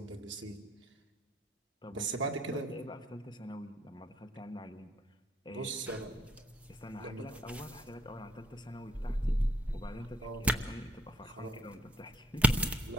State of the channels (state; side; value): normal; both; correlation 0.69